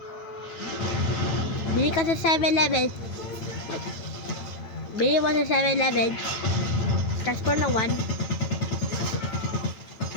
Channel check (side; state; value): right; late; 9.2 ms